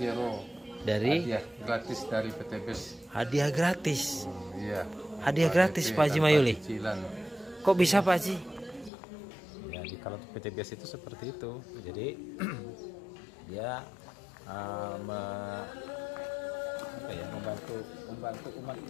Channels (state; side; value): drops out; right; at 8.9 s